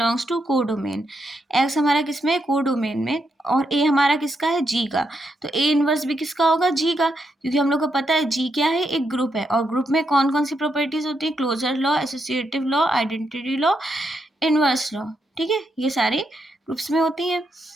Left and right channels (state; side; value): normal; both; correlation 0.81